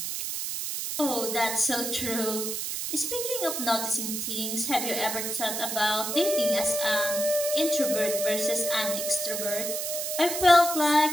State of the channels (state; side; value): noise; right; hiss, 3 dB below the sound